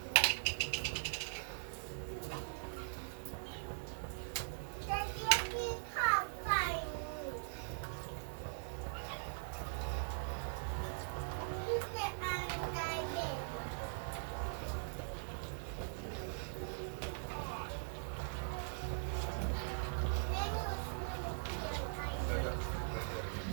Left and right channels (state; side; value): silent; left; digital silence